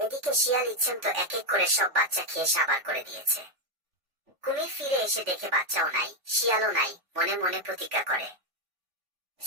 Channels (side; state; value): left; late; 3.5 ms